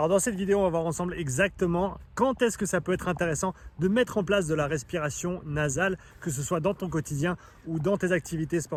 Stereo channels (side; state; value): both; identical; correlation 1.00